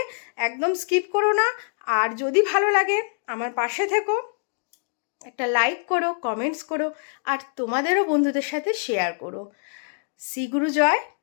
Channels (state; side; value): silent; right; digital silence